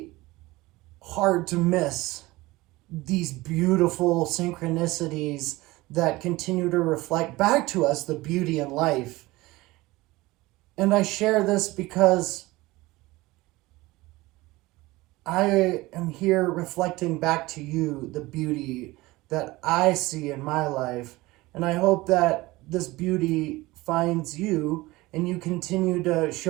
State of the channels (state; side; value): quieter; left; 20.1 dB